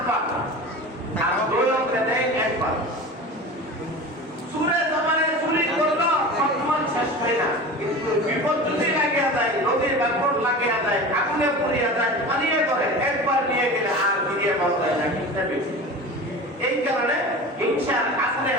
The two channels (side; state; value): both; normal; correlation 0.33